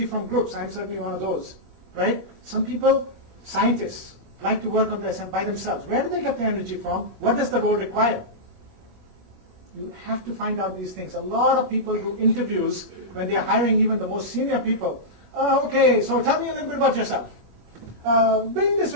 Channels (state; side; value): late; left; 21 ms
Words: from groups. I'm certainly one of those, right? Some people, scientists, like to work on this by themselves. Where do they get their energy from? What does the role require? You have to find out these things. A lot of people do interviews when they are hiring even the most senior people. Okay, so tell me a little bit about yourself. Bring this